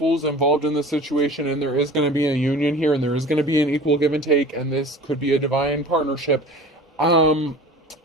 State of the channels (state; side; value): normal; both; correlation 0.41